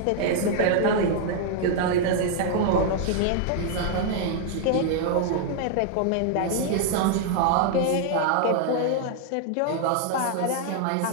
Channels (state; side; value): different; both; correlation 0.00